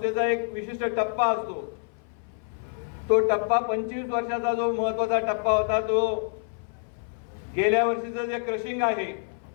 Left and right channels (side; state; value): right; silent; 60 dB below the other